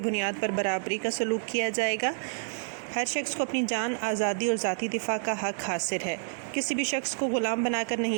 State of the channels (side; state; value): left; silent; digital silence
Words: بنیاد پر برابری کا سلوک کیا جائے گا۔ ہر شخص کو اپنی جان، آزادی اور ذاتی دفاع کا حق حاصل ہے۔ کسی بھی شخص کو غلام بنا کر